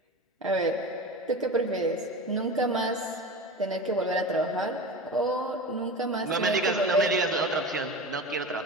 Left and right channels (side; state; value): both; normal; correlation 0.30